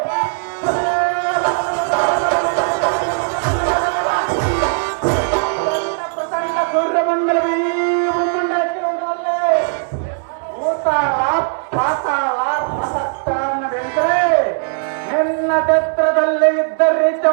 ಪ್ರಸನ್ನ ಸೂರ್ಯಮಂಡಲವೇ ಮುಂದಾಕಿಕೊಂಡವರೇ ಭೂತಾಳ ಪಾತಾಳ ಪ್ರಸಕ್ತನ್ನ ಬೆಳೆದರೆ ನಿನ್ನ ಛತ್ರದಲ್ಲಿ ಇದ್ದರೆ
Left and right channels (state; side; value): silent; left; digital silence